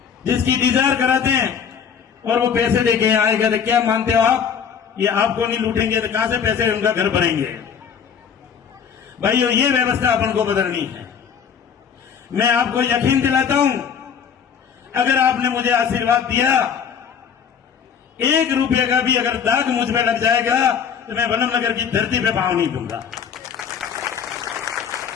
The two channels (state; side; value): quieter; right; 7.4 dB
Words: जिसकी इंतजार कराते हैं और वो पैसे देके यहाँ आएगा। तो क्या मानते हो आप, ये आपको नहीं लूटेंगे तो कहां से पैसे उनका घर भरेंगे? भाइयों, ये व्यवस्था अपन को बदलनी है। मैं आपको यकीन दिलाता हूं, अगर आपने मुझे आशीर्वाद दिया, 1 रुपये का भी अगर दाग मुझ में लग जाएगा तो मैं वनमनगर की धरती पे पांव नहीं दूंगा।